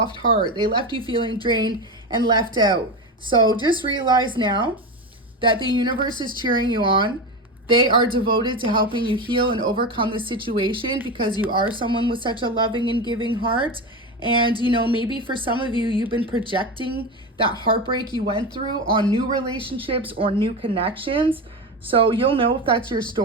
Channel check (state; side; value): normal; both; correlation 0.20